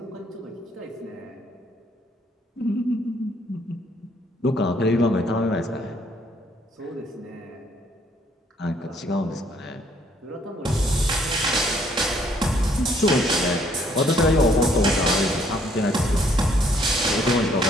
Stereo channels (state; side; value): normal; both; correlation 0.65